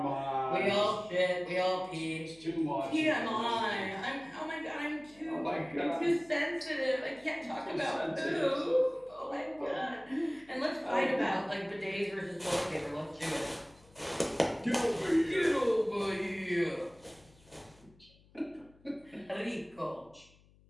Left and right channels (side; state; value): left; noise; hum, 28 dB below the sound